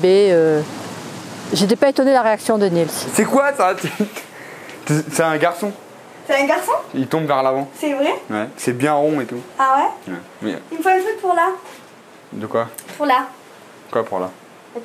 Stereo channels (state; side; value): identical; both; correlation 1.00